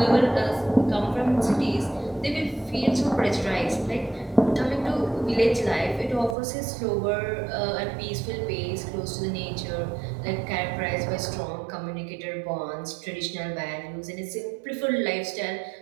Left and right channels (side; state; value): left; drops out; at 6.4 s